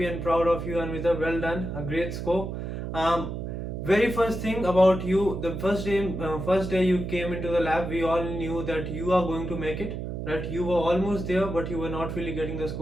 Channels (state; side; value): noise; right; hum, 5 dB below the sound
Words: and proud of you, Anvita. Well done, a great score. Very first thing about you, the first day you came into the lab, we all knew that you are going to make it. Right? You were almost there, but you were not really getting the